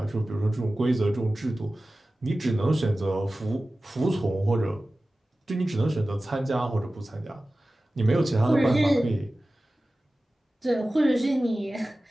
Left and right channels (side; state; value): both; normal; correlation 0.96